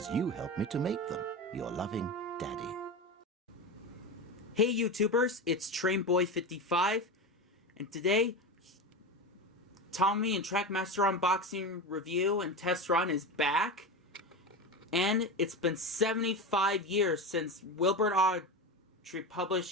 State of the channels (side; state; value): both; normal; correlation 0.22